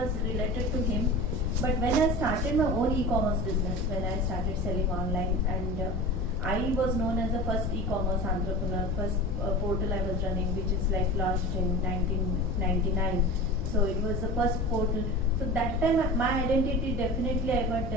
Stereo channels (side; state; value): both; normal; correlation 0.33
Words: related to him. But when I started my own e-commerce business, when I started selling online, and I was known as the first e-commerce entrepreneur, first portal I was running, which is like launched in 1999. So it was the first portal. So that time my identity definitely I got